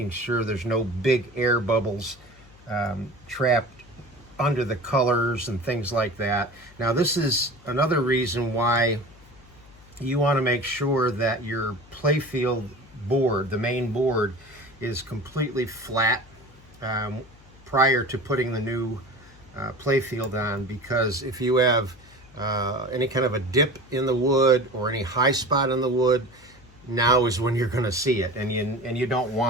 sure there's no big air bubbles trapped under the colors and things like that. Now this is another reason why you want to make sure that your Playfield board, the main board, is completely flat prior to putting the new Playfield on, because if you have any kind of a dip in the wood or any high spot in the wood, now is when you're going to see it, and you don't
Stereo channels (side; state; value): left; noise; hum, 24 dB below the sound